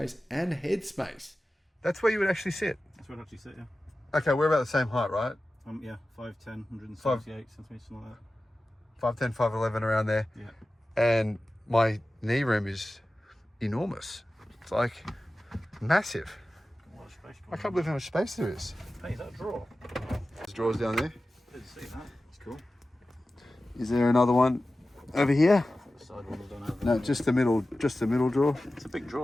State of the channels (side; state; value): both; normal; correlation 0.95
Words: and head space. That's where you would actually sit. That's where I'd actually sit, yeah. Okay, we're about the same height, right? Yeah, 5'10", 178 centimetres, something like that. 5'10", 5'11", around there. Yeah. And my knee room is enormous. It's like massive. A lot of space. I can't believe how much space there is. Hey, is that a drawer? There's drawers down there. Didn't see that. It's cool. Is there another one over here? The side ones don't have No, just the middle drawer. It's a big